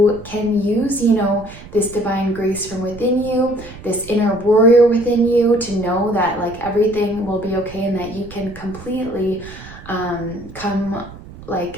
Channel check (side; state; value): right; noise; rumble, 17 dB below the sound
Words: can use, you know, this divine grace from within you, this inner warrior within you, to know that like everything will be okay and that you can completely